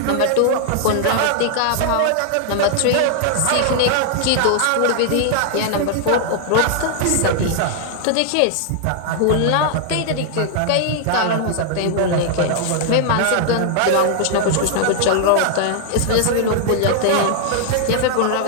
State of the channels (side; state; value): both; different; correlation -0.01